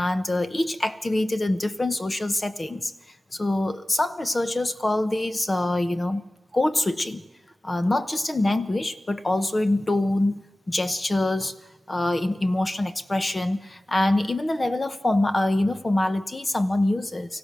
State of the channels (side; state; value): both; normal; correlation 0.97